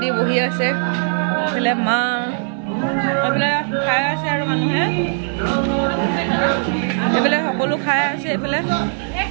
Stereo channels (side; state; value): left; silent; digital silence